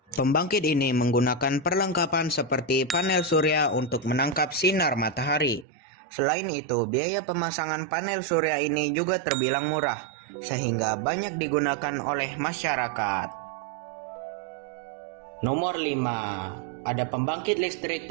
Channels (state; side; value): drops out; left; at 5.7 s